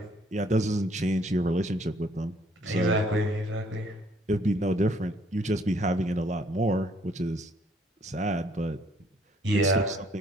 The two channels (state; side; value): normal; both; correlation 0.64